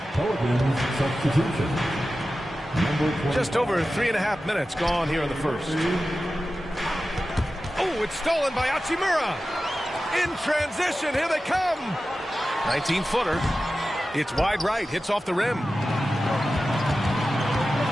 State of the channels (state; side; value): normal; both; correlation 0.94